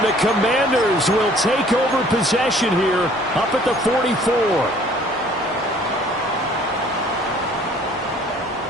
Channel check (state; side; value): normal; both; correlation 0.55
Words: the Commanders will take over possession here up at the 44.